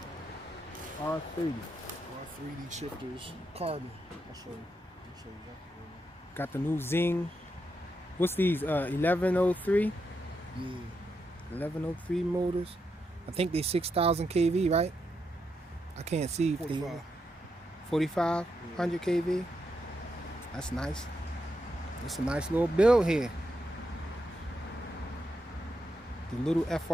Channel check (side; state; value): both; normal; correlation 0.83